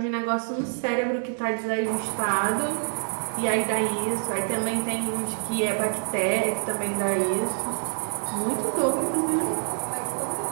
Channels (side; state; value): left; silent; digital silence